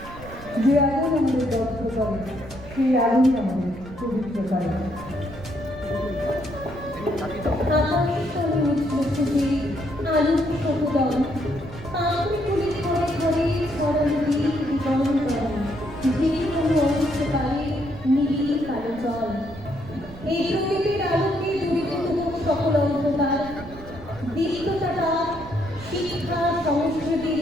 যে আগুন আমাদের দগ্ধ করে সেই আগুন আমাদের পবিত্র করে। এই প্রকৃতির আলোকে দূরীভূত সকল অন্ধকার, দীপ্ততা শিক্ষা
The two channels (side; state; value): right; noise; rumble, 16 dB below the sound